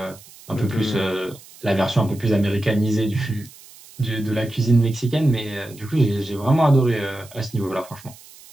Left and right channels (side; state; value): right; noise; hiss, 21 dB below the sound